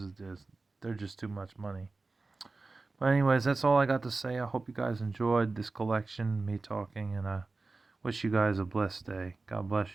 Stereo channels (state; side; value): quieter; left; 3.6 dB